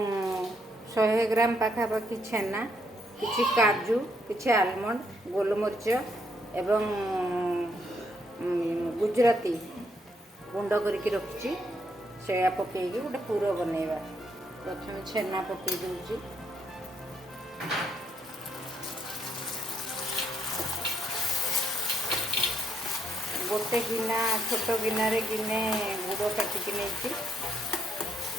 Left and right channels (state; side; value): normal; both; correlation 0.74